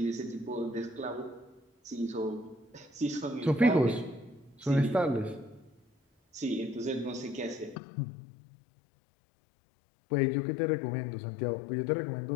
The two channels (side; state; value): right; drops out; at 7.8 s